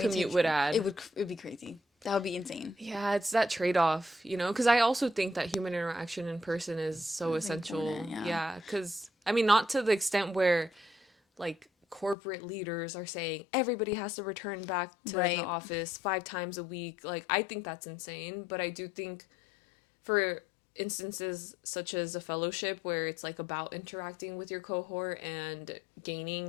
commute take would add. it would be crazy. That would be insane. Yeah, it's that trade-off, because I also think that human interaction in person is so It's essential. important, yeah. Yeah, cuz I mean not to the extent where like corporate leaders are saying everybody has to return back to the Right. office 5 times a week. Like I think that's insane, but I do think for instances such as a fellowship where it's like about interacting with your cohort and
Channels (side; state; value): right; drops out; at 12.2 s